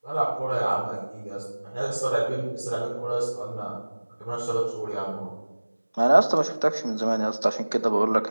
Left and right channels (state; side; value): inverted; both; correlation -1.00